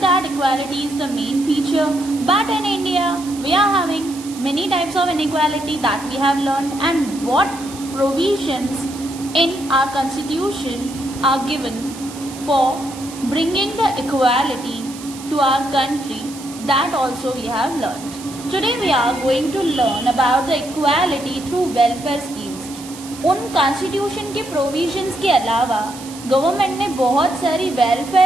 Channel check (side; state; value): right; noise; hiss, 15 dB below the sound